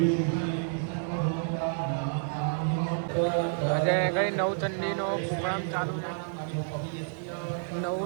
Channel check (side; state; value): left; silent; digital silence